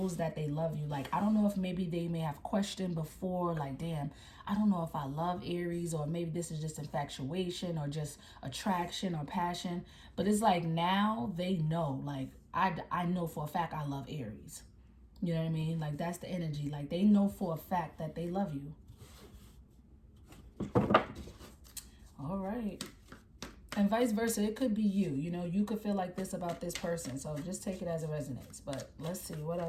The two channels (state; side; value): identical; both; correlation 1.00